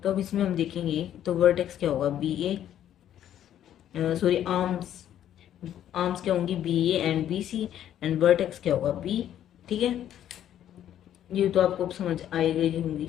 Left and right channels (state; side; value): quieter; right; 10.9 dB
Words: तो अब इसमें हम देखेंगे तो वर्टेक्स क्या होगा, B A, sorry arms, arms क्या होंगी, B A and B C, and vertex क्या होगा, बी. ठीक है, ये तो आपको अब समझ आई गई होंगी.